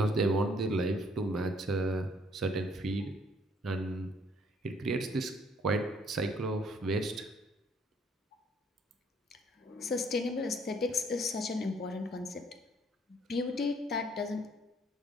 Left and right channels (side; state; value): both; normal; correlation 0.63